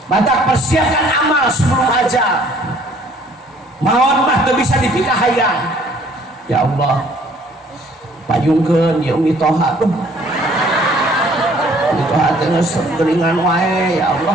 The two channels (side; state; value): both; normal; correlation 0.58